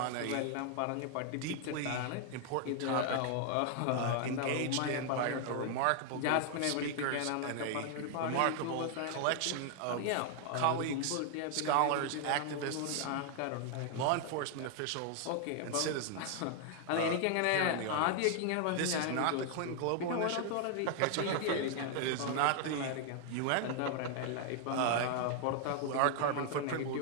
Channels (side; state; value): both; different; correlation 0.00